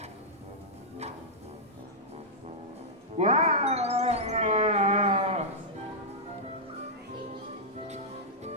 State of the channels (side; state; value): both; normal; correlation -0.09